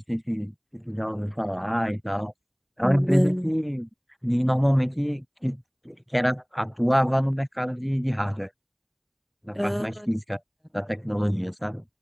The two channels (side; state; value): both; identical; correlation 1.00